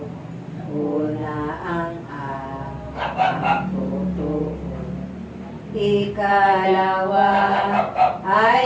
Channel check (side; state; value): both; identical; correlation 1.00